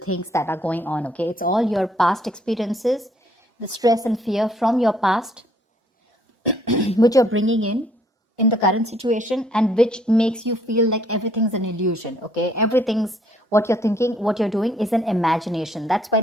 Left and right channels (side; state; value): both; normal; correlation 0.64